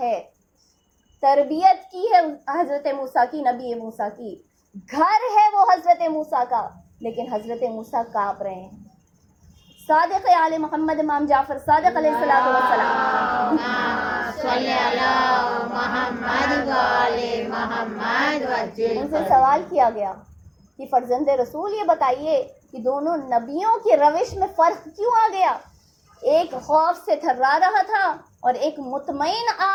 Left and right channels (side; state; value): both; identical; correlation 1.00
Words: تربیت کی ہے حضرت موسیٰ کی، نبی موسیٰ کی، گھر ہے وہ حضرت موسیٰ کا، لیکن حضرت موسیٰ کانپ رہے ہیں۔ صادق آل محمد امام جعفر صادق علیہ السلام صلی علی محمد و آل محمد وجل ان سے سوال کیا گیا کہ فرزند رسول یہ بتائیے کہ دونوں نبیوں کی روش میں فرق کیوں آ گیا؟ ایک خوف سے تھرا رہا تھا اور ایک مطمئن